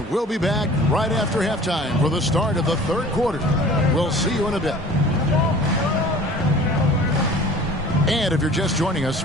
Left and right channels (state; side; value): normal; both; correlation 0.45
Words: we'll be back right after halftime for the start of the third quarter. We'll see you in a bit. And if you're just joining us,